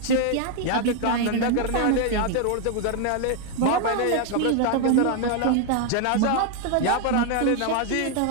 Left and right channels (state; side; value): different; both; correlation 0.00